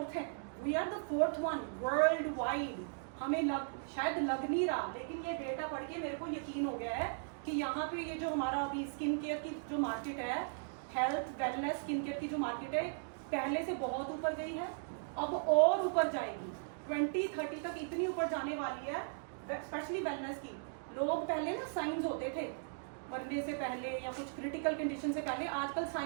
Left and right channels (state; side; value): silent; left; digital silence